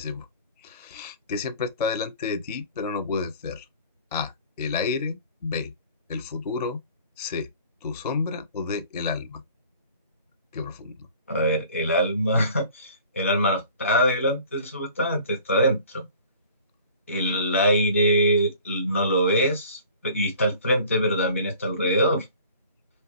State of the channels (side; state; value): both; inverted; correlation -0.48